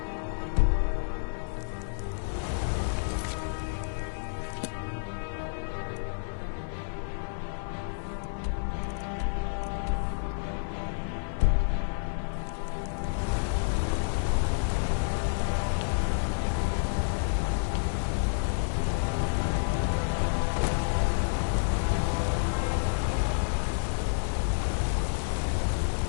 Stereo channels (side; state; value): right; silent; 58 dB below the other